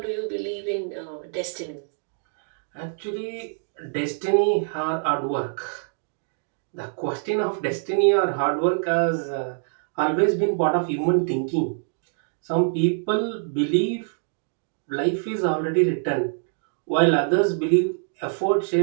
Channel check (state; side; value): silent; left; digital silence